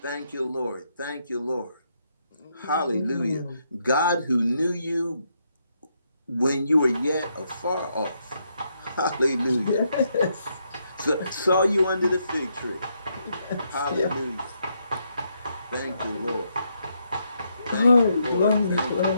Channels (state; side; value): inverted; both; correlation -0.78